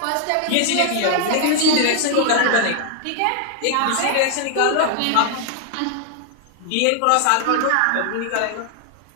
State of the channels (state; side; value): different; both; correlation 0.00